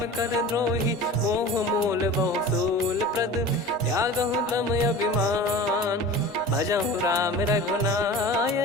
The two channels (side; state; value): both; normal; correlation 0.37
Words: कर द्रोही मोह मूल बहु सूल प्रद त्यागहु तम अभिमान भजहु राम